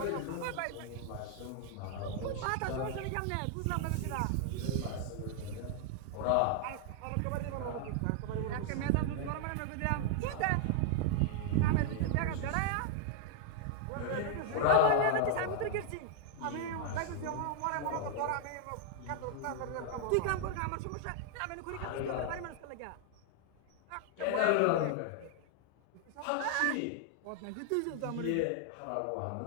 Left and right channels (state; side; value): different; both; correlation 0.00